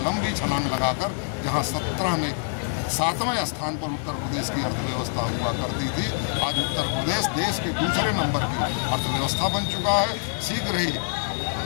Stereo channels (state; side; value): silent; right; digital silence